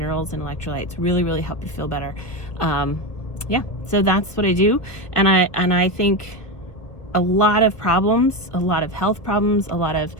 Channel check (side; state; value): right; late; 1.5 ms